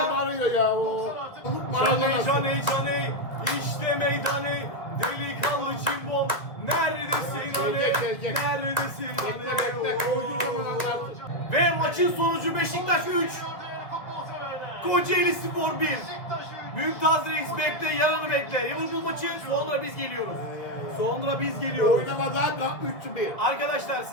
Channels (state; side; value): late; right; 1.6 ms